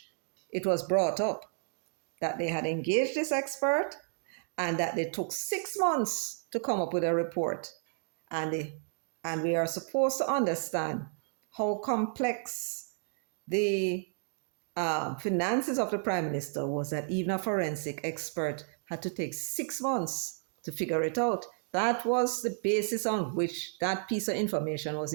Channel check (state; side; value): silent; left; 56 dB below the other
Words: it was brought up, that they had engaged this expert and that they took 6 months to come up with a report. And we are supposed to understand how complex the finances of the Prime Minister was, that even a forensic expert had to take 6 months to figure it out. That was the basis on which that piece of information was